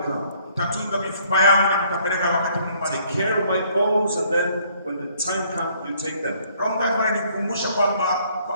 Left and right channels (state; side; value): inverted; both; correlation -0.63